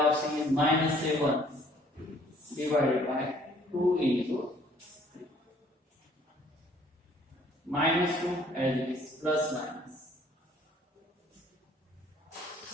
c is minus 7, divided by 2 into 3. Minus 2 as it is, plus minus.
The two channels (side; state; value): both; normal; correlation 0.59